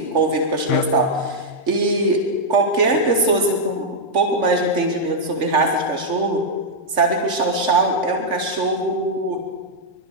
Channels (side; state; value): left; late; 3.5 ms